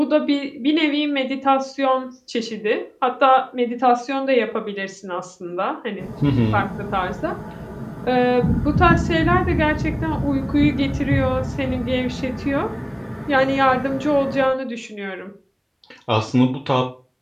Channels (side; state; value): both; identical; correlation 1.00